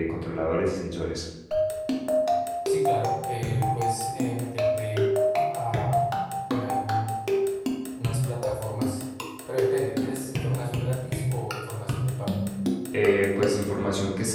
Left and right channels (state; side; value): identical; both; correlation 1.00